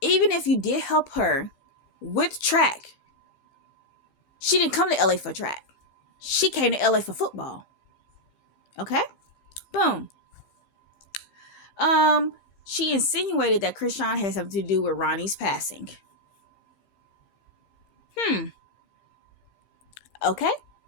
even if you did help her with track, she didn't come to LA for track. She came to LA for football. Okay? Boom. She insinuated that Krishan had something to do with Ronnie's passing. Okay.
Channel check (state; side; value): late; right; 15 ms